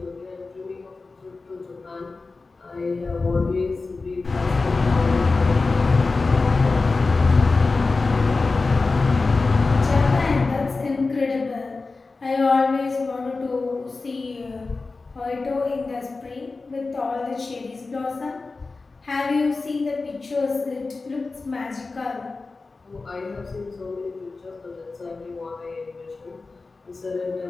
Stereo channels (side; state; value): right; quieter; 3.8 dB